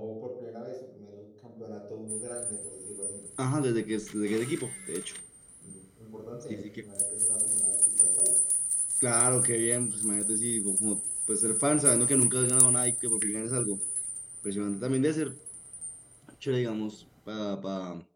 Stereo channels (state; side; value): identical; both; correlation 1.00